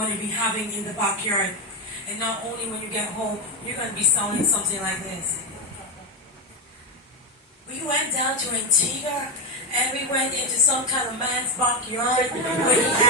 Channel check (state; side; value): normal; both; correlation 0.10